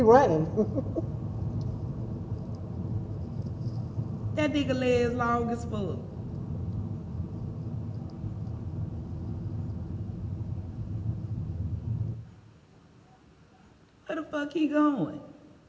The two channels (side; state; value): both; identical; correlation 1.00